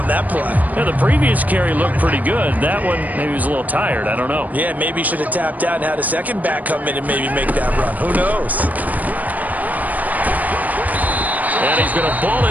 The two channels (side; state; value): left; late; 0.078 ms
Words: that play. Yeah, the previous carry looked pretty good. That one, maybe he was a little tired. I don't know. Yeah, maybe he should have tapped out and had a second back come in and maybe make that run. Who knows? And he's going to ball